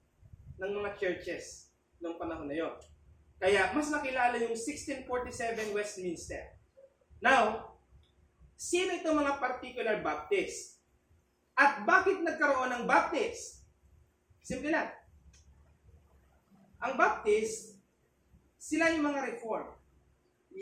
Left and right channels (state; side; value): identical; both; correlation 1.00